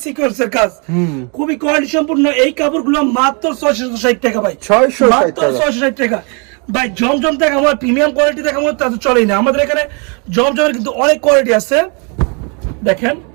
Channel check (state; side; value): quieter; left; 34.8 dB